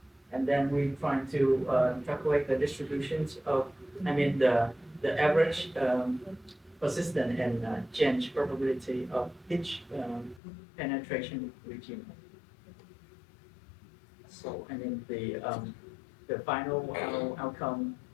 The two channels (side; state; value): right; drops out; at 10.4 s